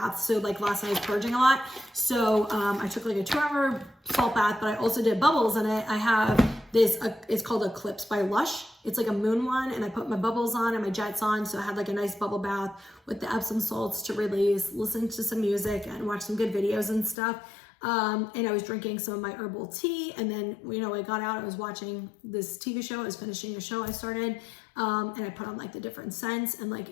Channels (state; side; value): drops out; right; at 17.2 s